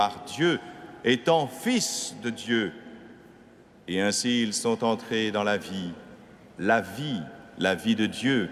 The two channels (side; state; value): both; identical; correlation 1.00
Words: Dieu, étant fils de Dieu. Et ainsi, ils sont entrés dans la vie de Dieu,